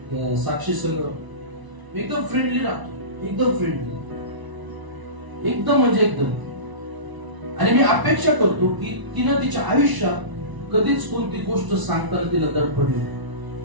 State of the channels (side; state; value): left; late; 1.0 ms